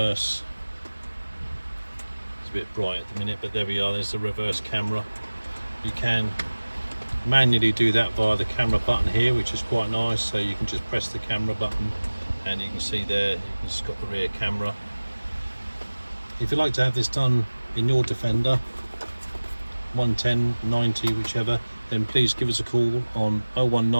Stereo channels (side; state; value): both; inverted; correlation -1.00